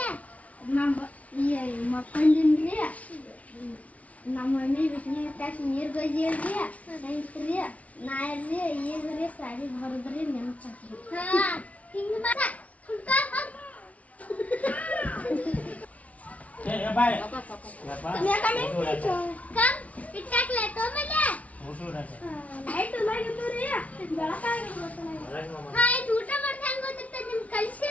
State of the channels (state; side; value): late; right; 0.068 ms